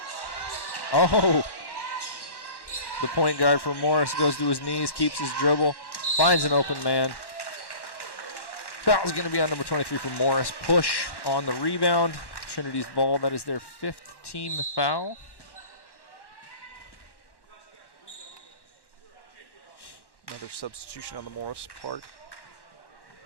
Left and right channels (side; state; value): right; late; 1.1 ms